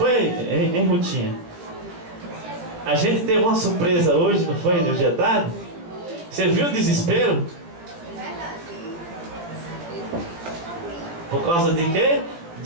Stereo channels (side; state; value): left; late; 17 ms